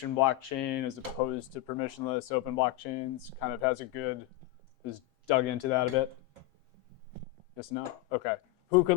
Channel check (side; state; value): right; quieter; 16.3 dB